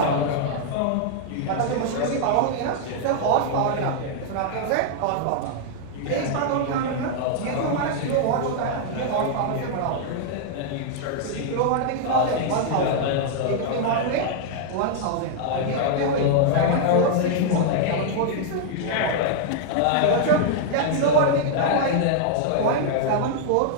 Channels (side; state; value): both; different; correlation -0.01